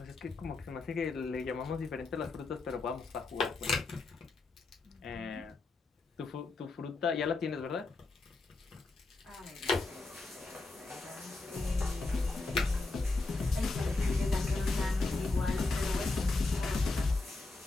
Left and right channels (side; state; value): right; quieter; 3.4 dB